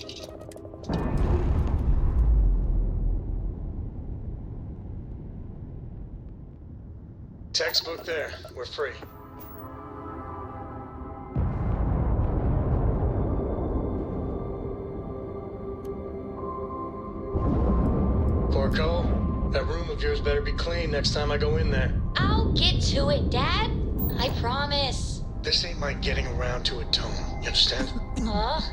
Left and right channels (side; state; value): both; identical; correlation 1.00